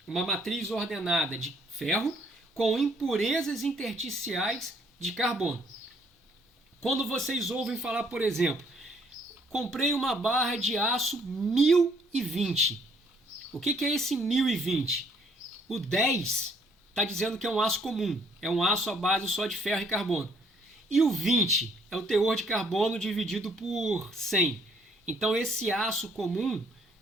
Uma matriz ordenada de ferro com impurezas intersticiais de carbono. Quando vocês ouvem falar, por exemplo, comprei uma barra de aço 1020. O que é esse 1020? O 10 está dizendo que é um aço comum, é um aço à base só de ferro e carbono. E o 20 é o teor de carbono dividido por 100. Então esse aço comum,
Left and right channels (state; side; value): normal; both; correlation 0.65